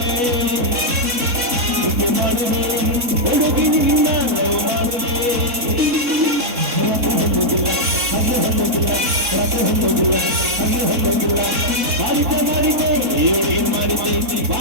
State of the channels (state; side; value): late; left; 4.1 ms